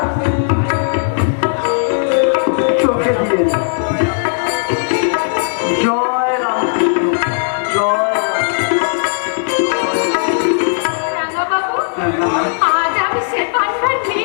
চোখে দিয়ে না। জয় রামকৃষ্ণ, জয় রাঙা বাবু, আজ আমি সে পান্না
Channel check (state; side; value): silent; right; digital silence